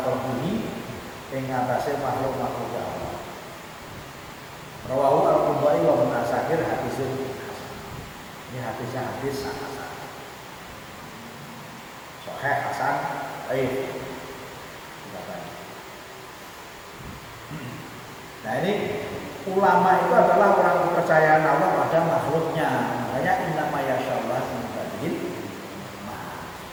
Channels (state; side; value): identical; both; correlation 1.00